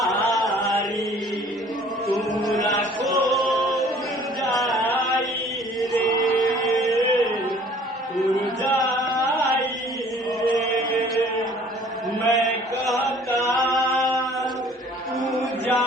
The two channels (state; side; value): normal; both; correlation 0.53